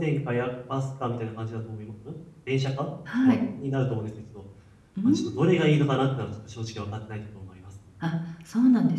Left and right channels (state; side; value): identical; both; correlation 1.00